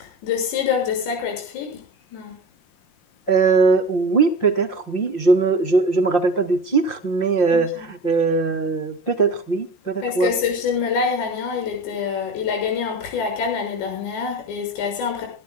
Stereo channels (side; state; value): right; late; 5.7 ms